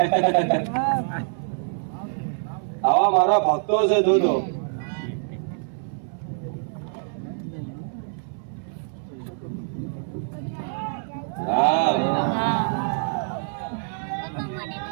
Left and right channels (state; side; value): silent; left; 62 dB below the other